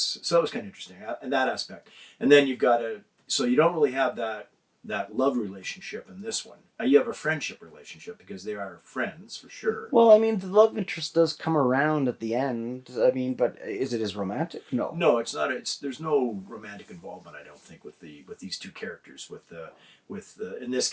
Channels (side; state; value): both; identical; correlation 1.00